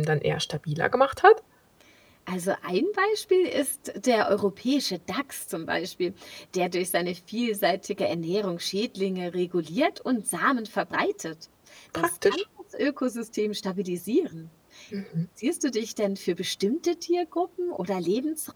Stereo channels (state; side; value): identical; both; correlation 1.00